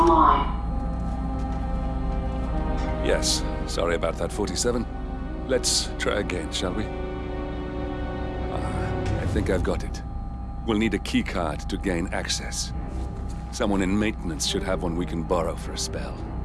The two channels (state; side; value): identical; both; correlation 1.00